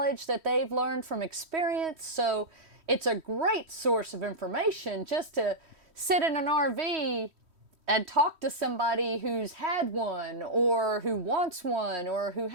that they've learned from experience. So it's a great source of information just to sit in an RV and talk to somebody who's had one or who wants one or who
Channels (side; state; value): left; late; 3.1 ms